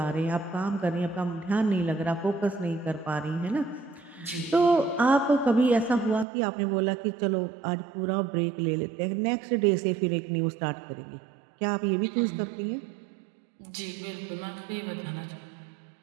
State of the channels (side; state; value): left; drops out; at 6.2 s